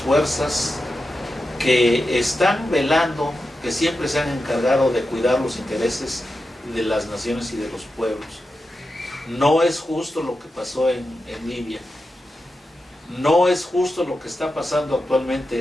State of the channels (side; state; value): both; normal; correlation 0.90